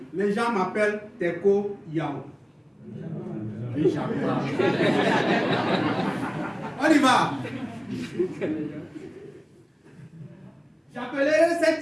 les gens m'appellent Teko Yao. On y va. J'appellerai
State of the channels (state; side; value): identical; both; correlation 1.00